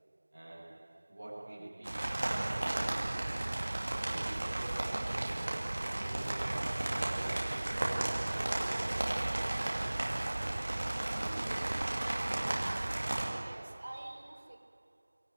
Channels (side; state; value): both; inverted; correlation -1.00